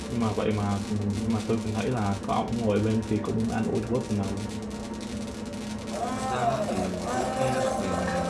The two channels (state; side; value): identical; both; correlation 1.00